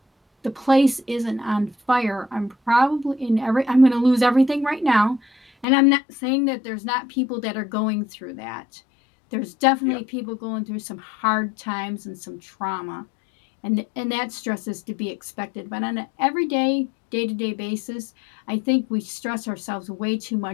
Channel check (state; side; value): drops out; right; at 5.7 s